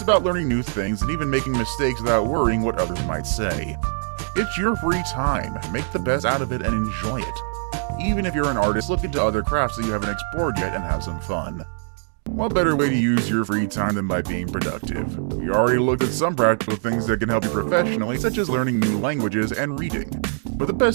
learning new things and even making mistakes without worrying what others might say. It's your free time. Make the best out of it and enjoy it. Even if you're an artist, look into other crafts that you haven't explored yet and have some fun. What better way to use your free time than by being productive? We already looked at some practical things that can help you professionally, such as learning new languages and reading. But the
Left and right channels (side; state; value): left; silent; digital silence